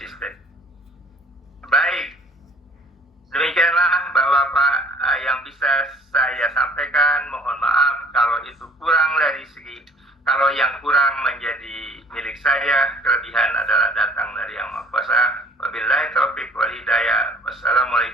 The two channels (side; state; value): both; normal; correlation 0.53